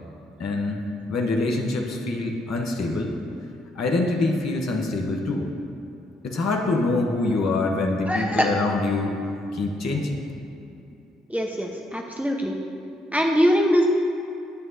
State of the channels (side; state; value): both; normal; correlation 0.75